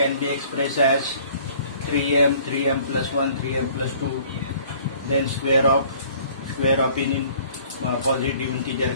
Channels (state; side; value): inverted; both; correlation -0.54